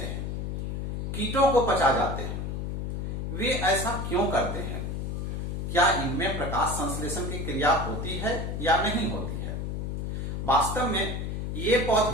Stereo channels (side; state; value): left; noise; hum, 3 dB below the sound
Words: हैं, कीटों को पचा जाते हैं। वे ऐसा क्यों करते हैं? क्या इनमें प्रकाश संश्लेषण की क्रिया होती है या नहीं होती है? वास्तव में ये